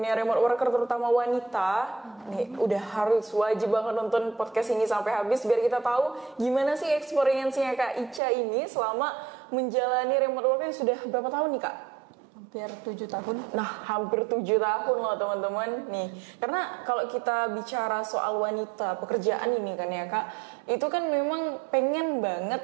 remote worker terutama wanita nih udah harus wajib banget nonton podcast ini sampai habis biar kita tahu gimana sih experience-nya Kak Ica ini selama menjalani remote worker yang sudah berapa tahun nih Kak? Hampir 7 tahun. Nah, hampir 7 tahun loh teman-teman. Nih, karena kalau kita bicara soal wanita, pekerjaan ini kan ya Kak, itu kan memang pengen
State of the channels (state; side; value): drops out; left; at 8.2 s